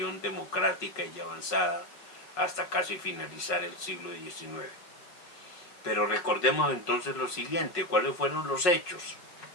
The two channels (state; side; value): late; right; 5.5 ms